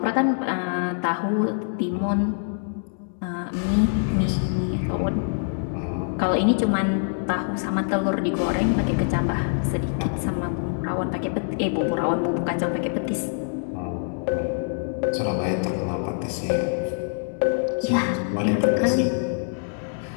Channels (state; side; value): silent; right; 62 dB below the other